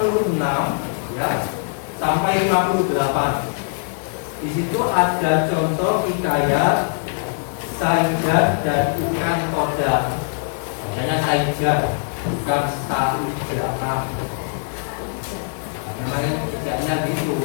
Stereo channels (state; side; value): silent; right; digital silence